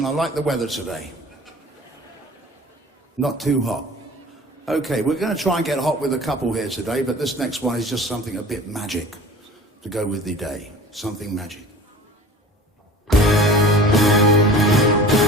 I like the weather today. Not too hot. Okay, we're going to try and get hot with a couple here today, but this next one is just something a bit magic to go with the day. Something magic.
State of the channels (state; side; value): normal; both; correlation 0.41